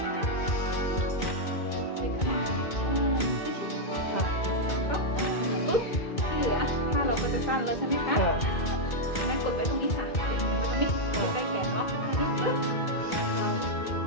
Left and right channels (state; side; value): late; right; 2.1 ms